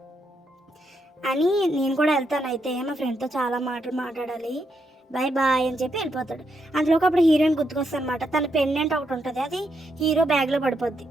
అని నేను కూడా వెళ్తాను అయితే, మా ఫ్రెండ్తో చాలా మాటలు మాట్లాడాలి, బాయ్ అని చెప్పి వెళ్ళిపోతాడు. అందులోకి అప్పుడు హీరోయిన్ గుర్తుకొస్తుంది అనమాట, తన పెండెంట్ ఒకటి ఉంటుంది, అది హీరో బ్యాగ్లో పడిపోతే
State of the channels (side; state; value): both; normal; correlation 0.80